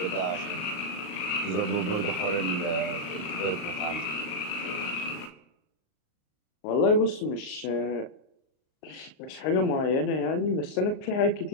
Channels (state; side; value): late; right; 39 ms